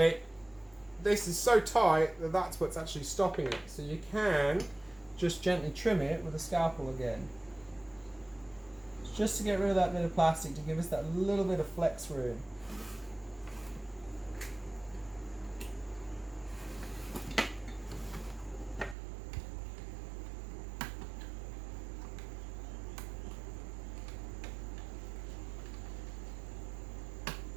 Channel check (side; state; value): left; drops out; at 18.9 s